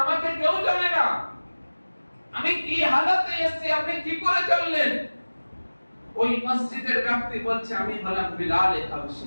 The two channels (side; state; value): both; inverted; correlation -1.00